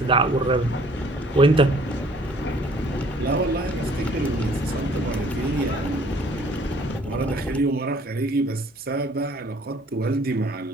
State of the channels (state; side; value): normal; both; correlation 0.57